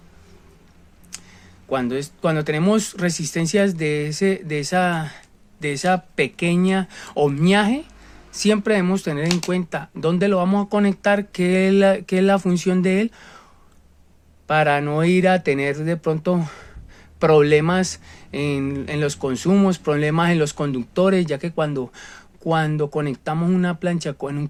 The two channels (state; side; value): identical; both; correlation 1.00